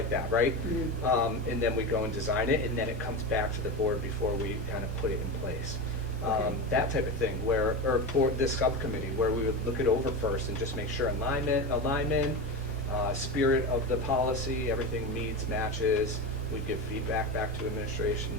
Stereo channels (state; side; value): normal; both; correlation 0.21